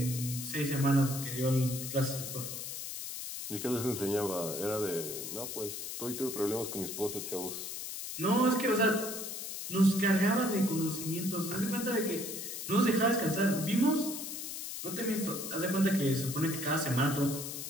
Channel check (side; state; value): left; noise; hiss, 6 dB below the sound